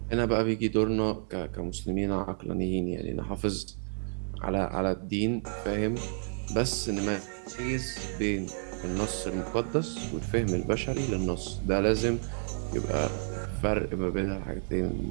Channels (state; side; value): silent; left; digital silence